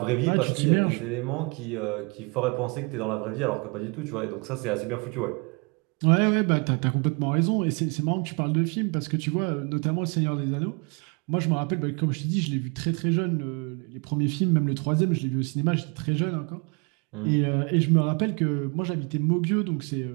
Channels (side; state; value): left; quieter; 31.7 dB